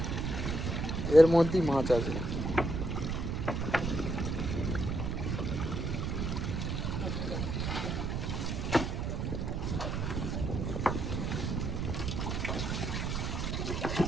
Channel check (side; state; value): right; noise; rumble, 1 dB below the sound